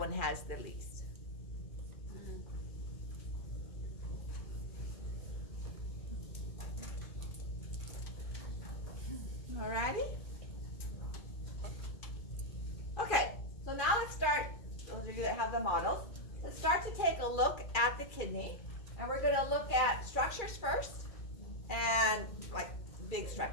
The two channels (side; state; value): right; late; 2.3 ms